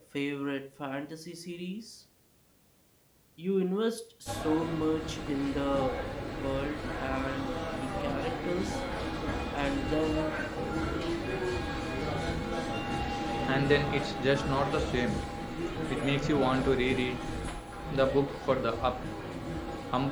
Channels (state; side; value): identical; both; correlation 1.00